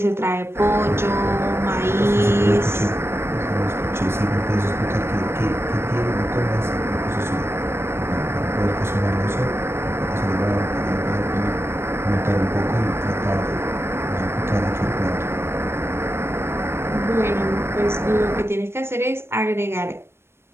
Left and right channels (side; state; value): left; late; 0.12 ms